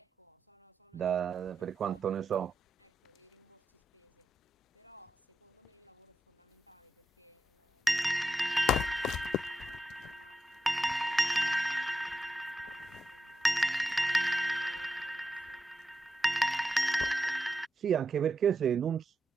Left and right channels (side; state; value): both; normal; correlation 0.88